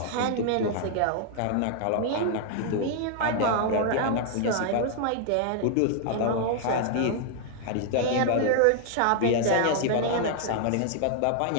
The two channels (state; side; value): different; both; correlation -0.01